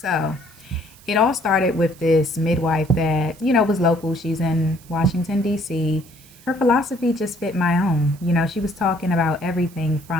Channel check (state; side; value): noise; right; hiss, 25 dB below the sound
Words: it all started with this midwife that, was local. She's in Washington, D.C. Her philosophy just fit my own. She was talking about everything